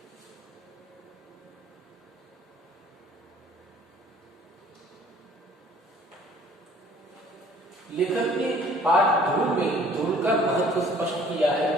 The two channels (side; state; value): both; normal; correlation 0.55